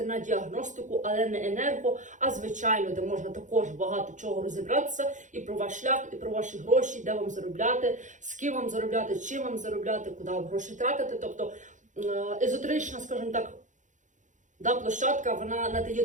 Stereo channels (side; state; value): left; late; 0.36 ms